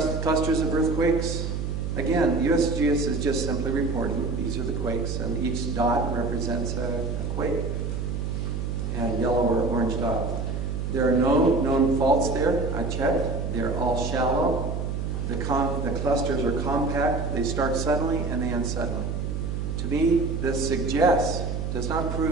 clusters of earthquakes. Again, USGS is just simply reporting these are the quakes, and each dot represents a quake, and yellow or orange dot. There are no known faults there. I checked. They're all shallow. The clusters are compact. They start suddenly and they end suddenly. To me, this suggests, does not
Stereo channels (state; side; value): noise; right; hum, 2 dB below the sound